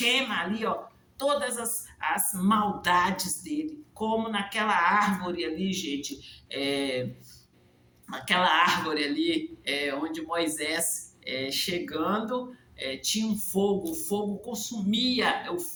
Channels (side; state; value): both; identical; correlation 1.00